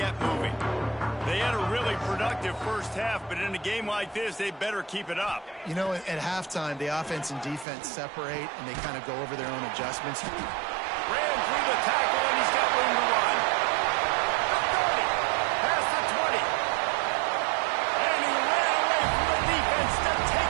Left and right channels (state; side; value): drops out; left; at 7.7 s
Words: moving. They had a really productive first half, but in a game like this, they better keep it up. You know, at halftime, the offense and defense separate, and they kind of go over their own adjustments. Ran through the tackle, and he's got room to run. The 30, past the 20. And he ran away from the defense to